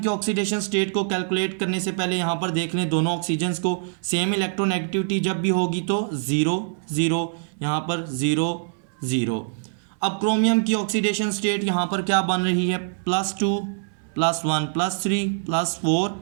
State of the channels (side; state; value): left; silent; 63 dB below the other